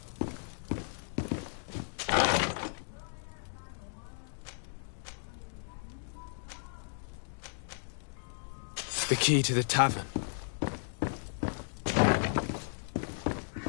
The key to the tavern.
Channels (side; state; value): right; silent; digital silence